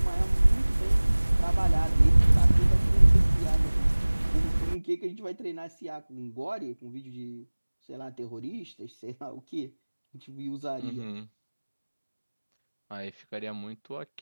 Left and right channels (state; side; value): inverted; both; correlation -1.00